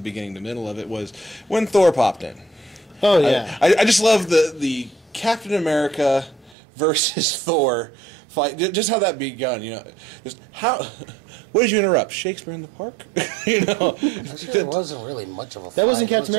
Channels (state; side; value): drops out; left; at 6.6 s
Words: beginning, the middle of it was when Thor popped in. Oh yeah. I just love the Captain America versus Thor fight, just how that begun, just how. What did you interrupt? Shakespeare in the Park? Actually, it wasn't really much of a fight. That wasn't Captain It